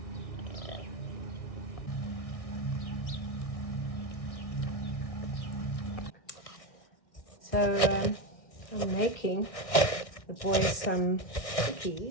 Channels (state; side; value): late; right; 1.6 ms